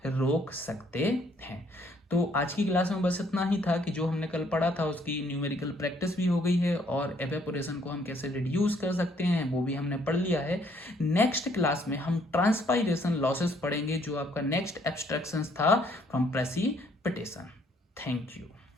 रोक सकते हैं। तो आज की क्लास में बस इतना ही था कि जो हमने कल पढ़ा था उसकी न्यूमेरिकल प्रैक्टिस भी हो गई है और एवेपोरेशन को हम कैसे रिड्यूस कर सकते हैं वो भी हमने पढ़ लिया है। नेक्स्ट क्लास में हम ट्रांसपाइरेशन लॉसेस पढ़ेंगे, जो आपका नेक्स्ट एब्स्ट्रैक्शंस था फ्रॉम प्रेसिपिटेशन। Thank you.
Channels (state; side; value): normal; both; correlation 0.65